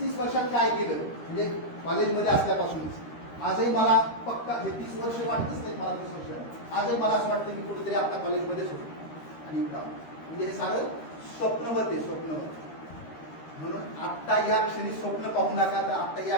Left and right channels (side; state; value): right; late; 13 ms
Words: वर्षात काय केलं, म्हणजे कॉलेजमध्ये असल्यापासूनच आजही मला पक्का हे 30 वर्ष वाटतच नाही मला, 30 वर्ष आजही मला असं वाटतं की कुठेतरी आपल्या कॉलेजमध्येच होतो. आणि म्हणजे हे सारं स्वप्नवत आहे, स्वप्नवत. म्हणून आत्ता या क्षणी स्वप्न पाहू नका. तर आत्ता या